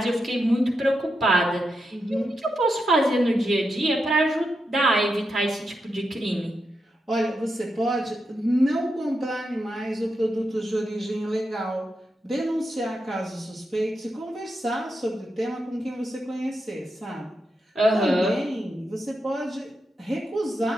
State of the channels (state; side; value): normal; both; correlation 0.86